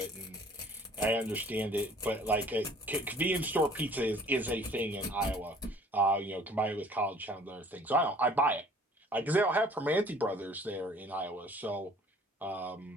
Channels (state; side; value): normal; both; correlation 0.53